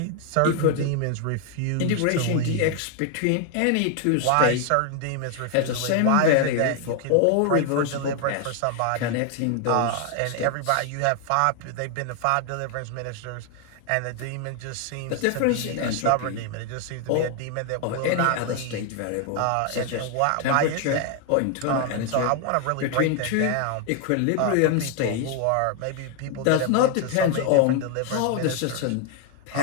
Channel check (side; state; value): both; different; correlation 0.00